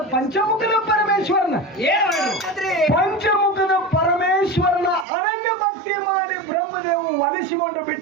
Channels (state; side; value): drops out; left; at 5.1 s